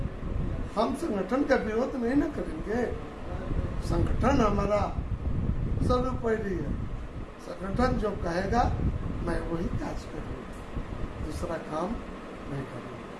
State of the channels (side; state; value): both; identical; correlation 1.00